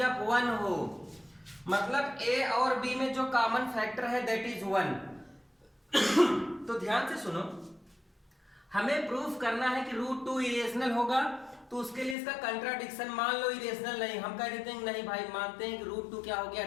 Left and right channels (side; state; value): right; drops out; at 12.2 s